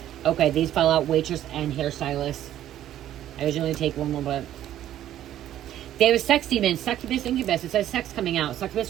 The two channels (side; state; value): left; quieter; 12.1 dB